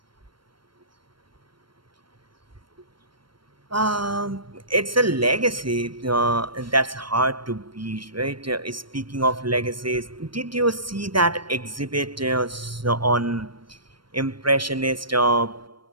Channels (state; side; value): late; left; 0.73 ms